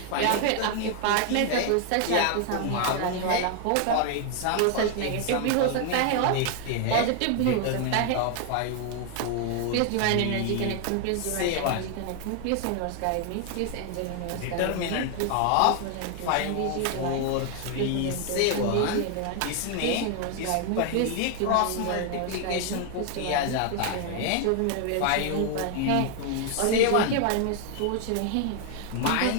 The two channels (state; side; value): different; both; correlation 0.00